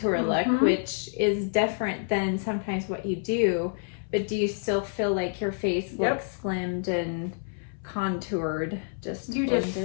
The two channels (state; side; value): silent; right; 59 dB below the other